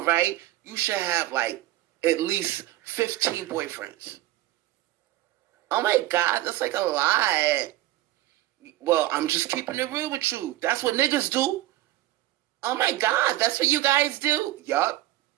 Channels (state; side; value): quieter; left; 16.1 dB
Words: right? You should have like at least 15 boyfriends. Oh my God, that's like a lot. Well, I'm just keeping it real with you. That's what niggas do. Oh my God, that's what you guys do. Yup,